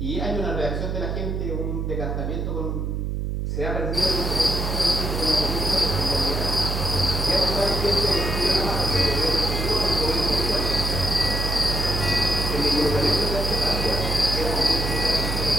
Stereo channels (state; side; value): noise; right; hum, 2 dB below the sound